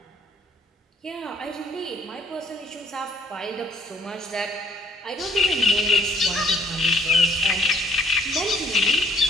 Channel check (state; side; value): normal; both; correlation 0.63